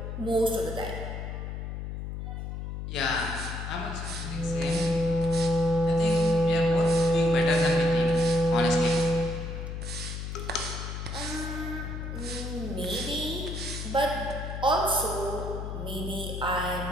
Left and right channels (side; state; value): left; noise; hum, 6 dB below the sound